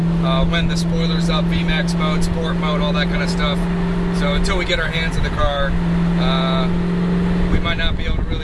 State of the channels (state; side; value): identical; both; correlation 1.00